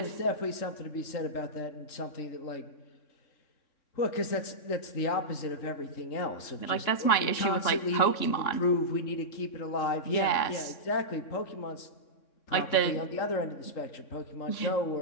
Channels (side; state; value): right; late; 3.6 ms